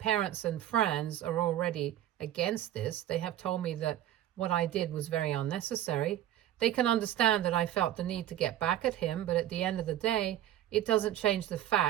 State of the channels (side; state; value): left; quieter; 12.4 dB